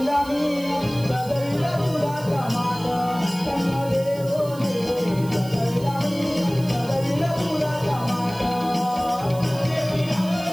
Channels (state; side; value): noise; right; hiss, 19 dB below the sound